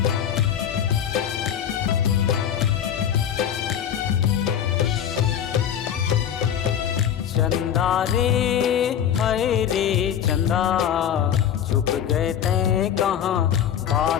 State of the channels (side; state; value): right; quieter; 9.3 dB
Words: चंदा रे हाय रे चंदा, छुप गए तैं कहाँ